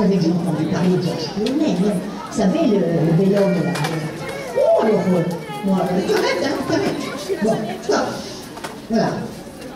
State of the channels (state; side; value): identical; both; correlation 1.00